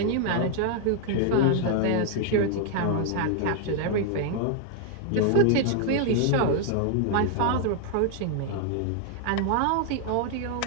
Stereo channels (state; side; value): different; both; correlation 0.00